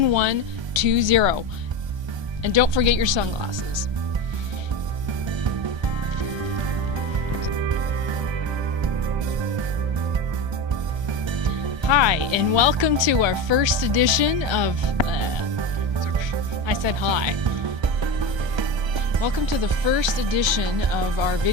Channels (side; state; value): left; late; 1.3 ms